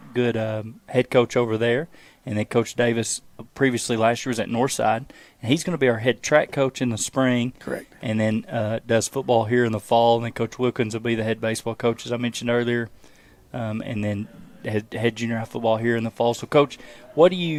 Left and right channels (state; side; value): identical; both; correlation 1.00